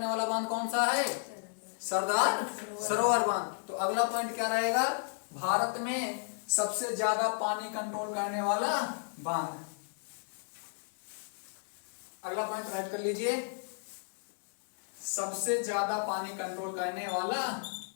वाला बांध कौन सा है? सरदार सरोवर बांध। तो अगला पॉइंट क्या रहेगा? भारत में सबसे ज्यादा पानी कंट्रोल करने वाला बांध। अगला पॉइंट राइट कर लीजिए, सबसे ज्यादा पानी कंट्रोल करने वाला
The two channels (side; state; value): right; silent; 56 dB below the other